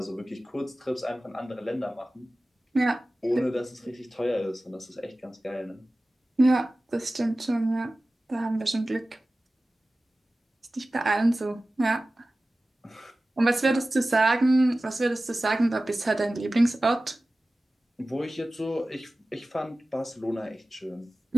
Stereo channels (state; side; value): normal; both; correlation 0.96